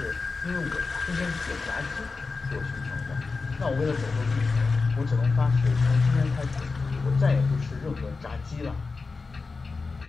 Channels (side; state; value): right; quieter; 4.2 dB